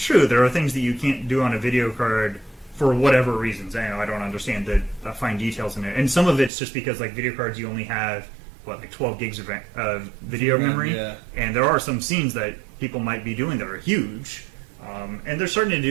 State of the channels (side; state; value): left; drops out; at 6.5 s